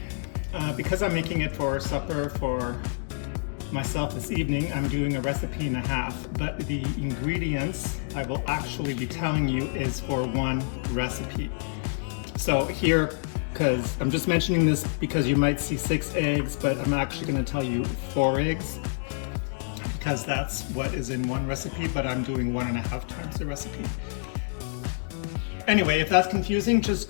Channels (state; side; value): silent; right; digital silence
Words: because I'm making it for supper for myself this evening, I'm doing a recipe and a half, but the ingredients I will actually be telling you is for one recipe. So here, because I'm just mentioning this because you might see 6 eggs, but I'm actually going to tell you 4 eggs because that's what is in one recipe, but I'm doing 1.5 times the recipe. Anyway, if that's confusing, just